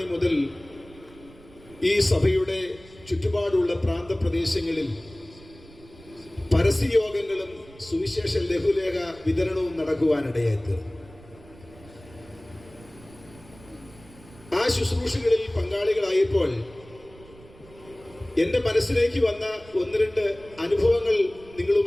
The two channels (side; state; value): right; noise; rumble, 22 dB below the sound